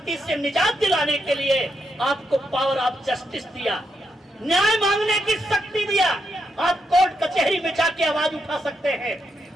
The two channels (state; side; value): normal; both; correlation 0.81